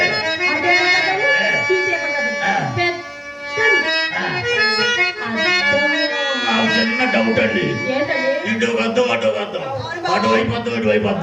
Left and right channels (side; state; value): both; identical; correlation 1.00